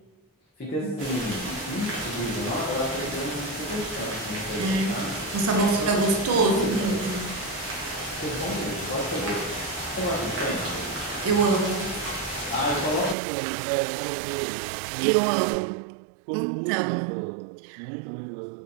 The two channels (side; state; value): left; drops out; at 13.2 s